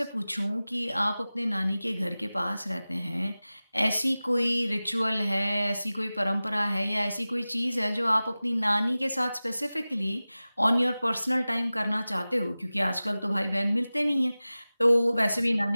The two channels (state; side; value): inverted; both; correlation -0.97